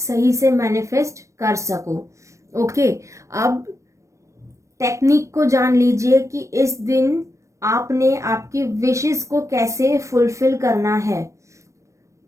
से मैनिफेस्ट कर सको। ओके, अब टेक्निक को जान लीजिए कि इस दिन आपने आपकी विशेस को कैसे फुलफिल करना है।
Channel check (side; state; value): left; late; 0.15 ms